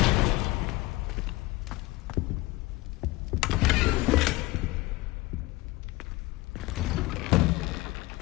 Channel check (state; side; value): quieter; right; 20.9 dB